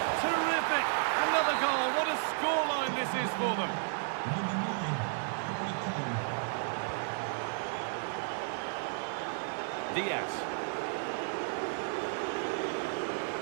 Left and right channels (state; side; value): silent; left; digital silence